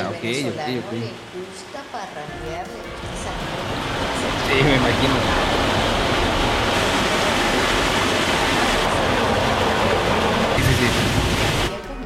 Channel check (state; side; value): identical; both; correlation 1.00